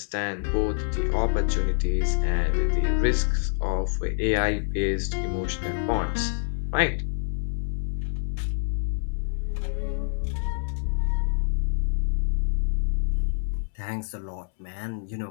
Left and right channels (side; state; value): right; silent; 61 dB below the other